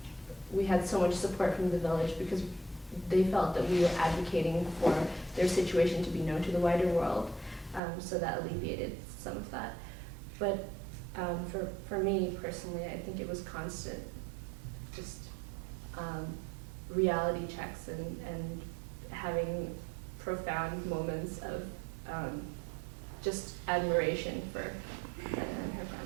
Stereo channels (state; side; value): drops out; left; at 7.8 s